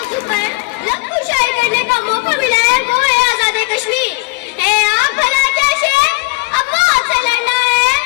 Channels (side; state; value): right; quieter; 26.5 dB